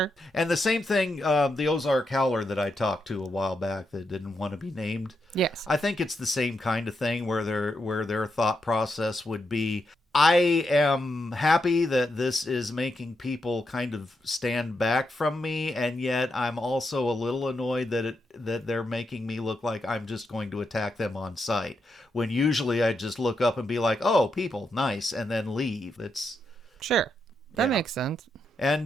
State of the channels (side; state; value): both; normal; correlation 0.83